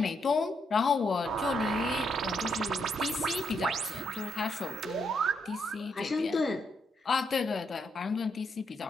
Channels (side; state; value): both; normal; correlation 0.78